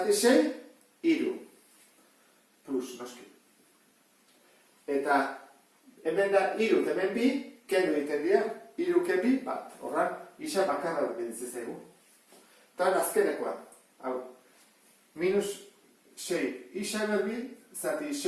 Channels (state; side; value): identical; both; correlation 1.00